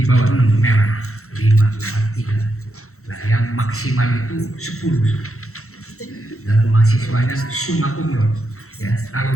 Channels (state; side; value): late; right; 0.63 ms